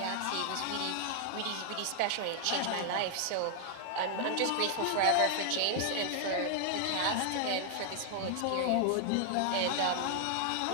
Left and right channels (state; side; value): different; both; correlation 0.00